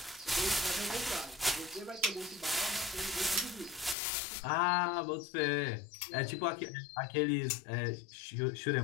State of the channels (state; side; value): drops out; right; at 4.0 s